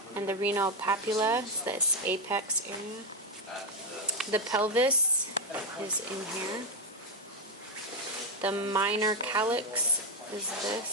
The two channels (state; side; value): normal; both; correlation 0.08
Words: and the renal papilla, this apex area. The pelvis is in here. The minor calyx is